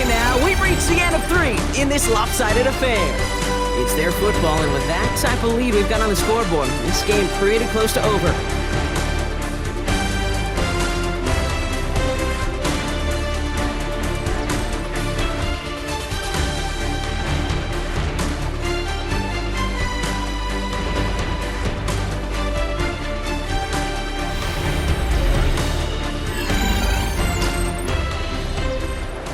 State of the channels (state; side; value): identical; both; correlation 1.00